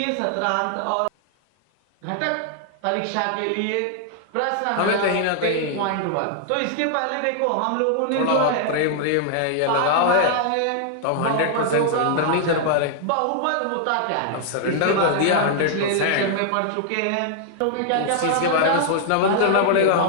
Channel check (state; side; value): different; both; correlation -0.01